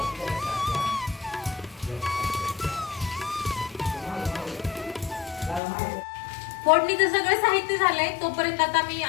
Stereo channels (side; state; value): right; drops out; at 5.6 s